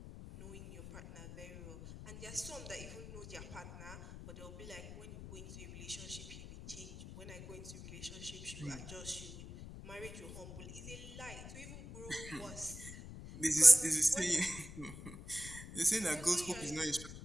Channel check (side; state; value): left; noise; rumble, 13 dB below the sound